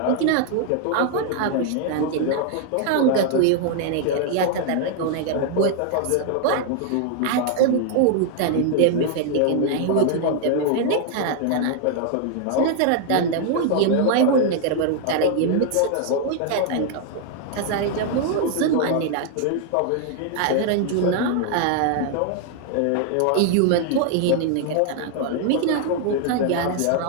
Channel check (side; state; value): both; different; correlation 0.00